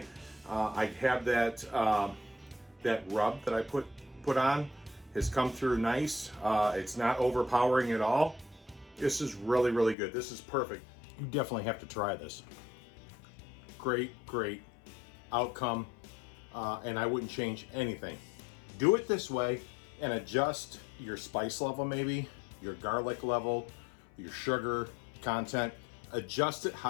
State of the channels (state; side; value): drops out; right; at 10.0 s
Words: I have that that rub that I put on has come through nice. It's not overpowering at all. This is really, really good. This is perfect. You definitely have to try this. Great, great outcome, and I wouldn't change anything. Do it this way and adjust your spice level, maybe your garlic level, your sugar content. Adjust it